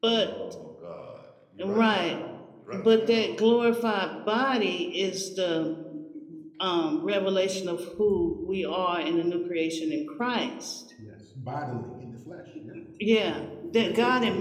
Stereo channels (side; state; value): both; identical; correlation 1.00